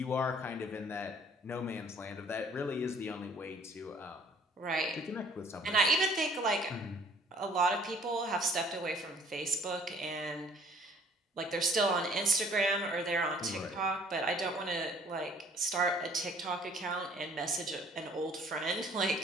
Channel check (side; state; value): both; normal; correlation 0.56